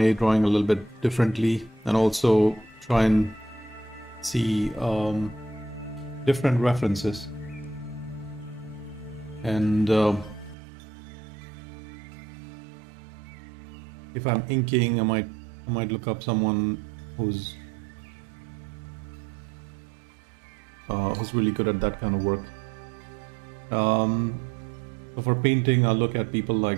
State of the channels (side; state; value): left; drops out; at 10.6 s